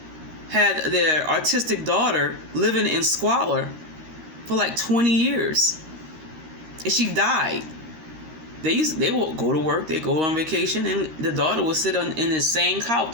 had their autistic daughter living in squalor for like 20 years. And she died. They would go to work, they go on vacation, and the daughter would sit in the same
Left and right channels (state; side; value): late; left; 13 ms